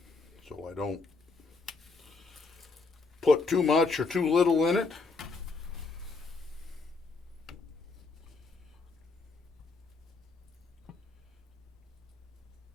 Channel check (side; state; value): right; quieter; 3.9 dB